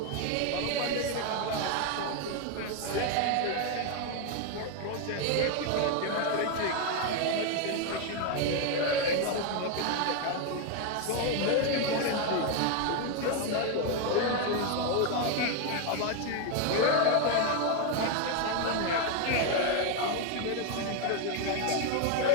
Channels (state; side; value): different; both; correlation 0.01